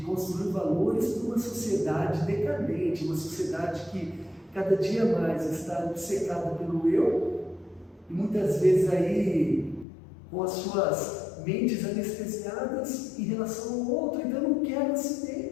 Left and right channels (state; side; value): drops out; right; at 9.9 s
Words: construir valores para uma sociedade decadente, uma sociedade que cada dia mais está obcecada pelo eu e muitas vezes aí com as suas mentes anestesiadas em relação ao outro. Então eu não quero